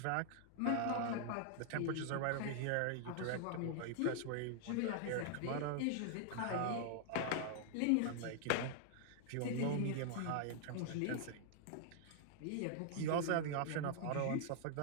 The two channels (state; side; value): different; both; correlation -0.01